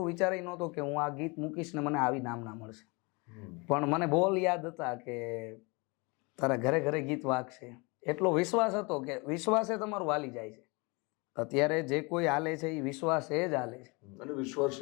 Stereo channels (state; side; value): quieter; right; 28.3 dB